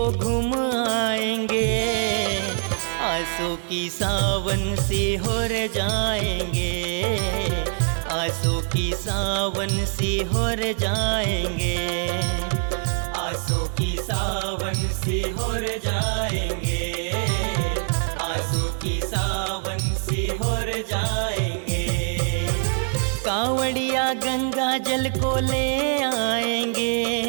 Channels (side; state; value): left; silent; 62 dB below the other